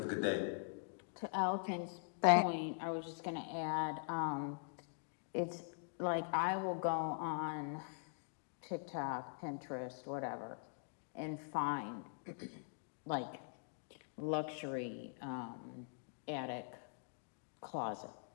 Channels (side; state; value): right; silent; digital silence